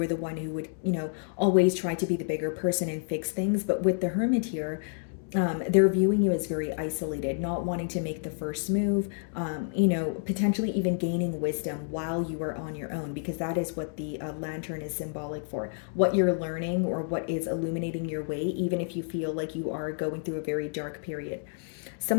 the one who would, always try to be the bigger person and fix things. But with the Hermit here, They're viewing you as very isolated, not wanting to make the first move, potentially even gaining wisdom while you are on your own, because that is what the lantern is symbolic for. What you're learning or what is illuminating your way, even if you feel like you are going through a very dark period.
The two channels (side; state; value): right; silent; 58 dB below the other